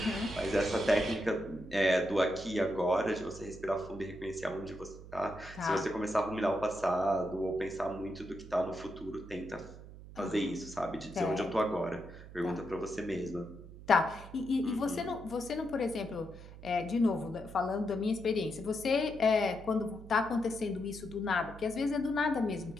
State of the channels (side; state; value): right; noise; hum, 16 dB below the sound